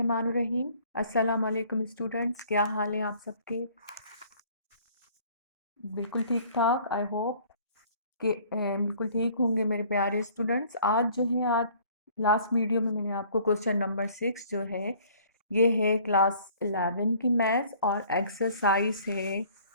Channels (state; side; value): inverted; both; correlation -0.55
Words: अस्सलाम वालेकुम स्टूडेंट्स, क्या हाल है आप सबके? बिल्कुल ठीक ठाक। आई होप कि बिल्कुल ठीक होंगे मेरे प्यारे स्टूडेंट्स। आज लास्ट वीडियो में मैंने आपको क्वेश्चन नंबर 6 जो है ये है क्लास 11 की मैथ्स और एक्सरसाइज है